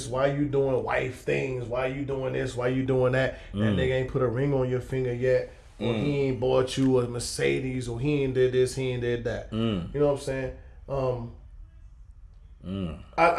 why you doing wife things? Why you doing this? Why you doing that? That nigga ain't put a ring on your finger yet. Or he ain't bought you a Mercedes, or he ain't did this, he ain't did that. You know what I'm saying?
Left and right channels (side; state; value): both; identical; correlation 1.00